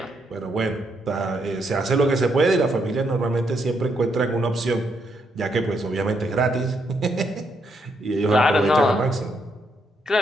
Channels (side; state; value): both; normal; correlation 0.77